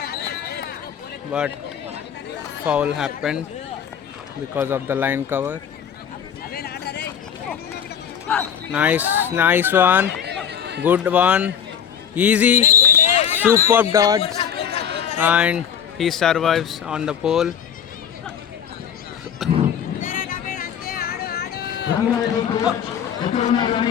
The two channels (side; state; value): right; quieter; 8.5 dB